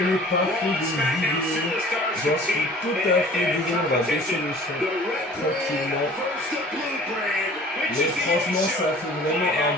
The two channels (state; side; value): normal; both; correlation 0.48